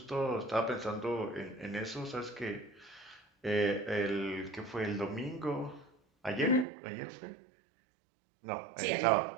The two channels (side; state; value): left; drops out; at 6.7 s